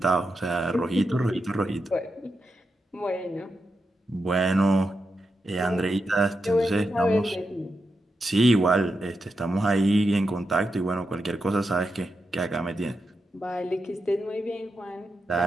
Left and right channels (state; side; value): normal; both; correlation 0.87